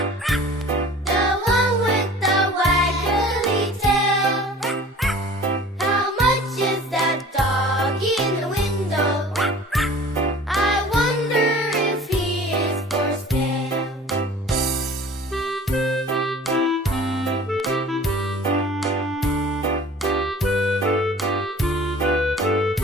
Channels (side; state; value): both; normal; correlation 0.45